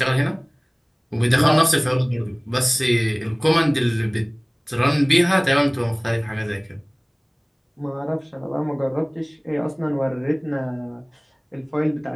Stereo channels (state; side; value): identical; both; correlation 1.00